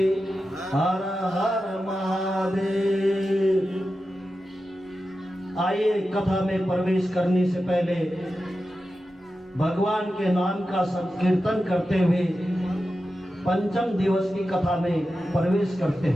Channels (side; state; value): both; normal; correlation 0.92